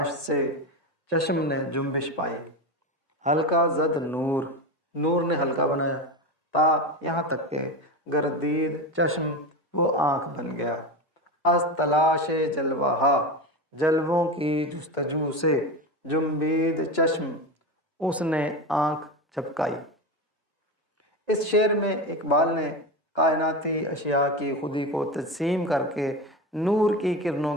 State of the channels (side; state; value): both; normal; correlation 0.21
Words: سے چشم نے جنبش پائی۔ ہلکا زد نور، نور نے ہلکا بنایا، تا یہاں تک کہ گردید چشم، وہ آنکھ بن گیا، از تلاش جلوہ، جلووں کی جستجو سے، جنبید چشم، اس نے آنکھ جھپکائی۔ اس شعر میں اقبال نے کائناتی اشیاء کی خودی کو تجسیم کر کے نور کی کرنوں